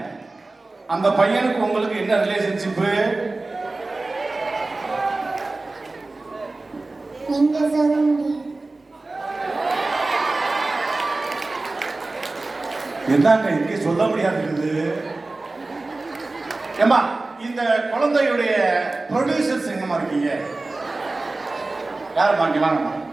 அந்த பையனுக்கு உங்களுக்கு என்ன ரிலேஷன்ஷிப்பு? என்னங்க இங்கே சொல்ல முடியாது. ஏமா, இந்த குழந்தையுடைய ப்ரொடியூசர்ஸ் எங்கம்மா இருக்கீங்க? யாருமா இங்க வாங்கம்மா.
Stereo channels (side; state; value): left; quieter; 3.2 dB